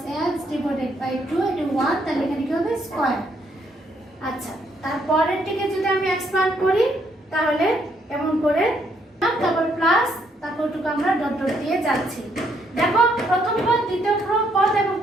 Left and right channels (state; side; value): normal; both; correlation 0.72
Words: x divided by 2, এটা 1, তাহলে এখানে কি হবে? স্কয়ার। আচ্ছা, তারপরেরটিকে যদি আমি এক্সপ্যান্ড করি তাহলে এমন করে, তারপর প্লাস, তারপর টুকু আমরা ডট ডট দিয়ে যাচ্ছি। দেখো প্রথম পদ, দ্বিতীয় পদ এবং